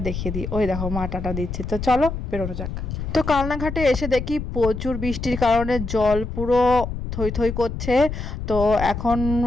দেখিয়ে দিই। ওই দেখো মা টাটা দিচ্ছে। তো চলো বেরোনো যাক। তো কালনাঘাটে এসে দেখি প্রচুর বৃষ্টির কারণে জল পুরো থই থই করছে। তো এখন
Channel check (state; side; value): noise; left; rumble, 6 dB below the sound